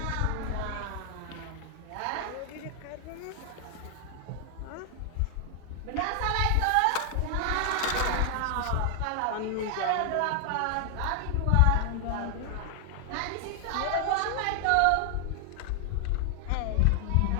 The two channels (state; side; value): different; both; correlation 0.00